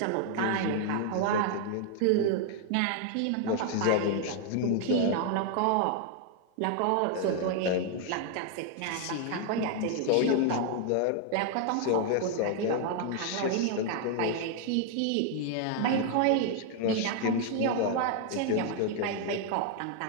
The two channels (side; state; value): both; different; correlation 0.00